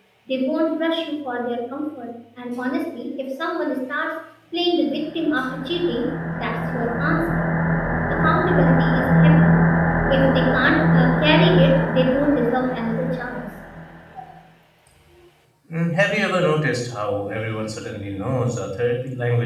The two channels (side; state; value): both; identical; correlation 1.00